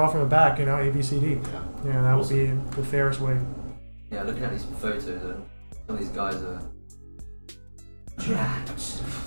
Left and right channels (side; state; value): both; inverted; correlation -1.00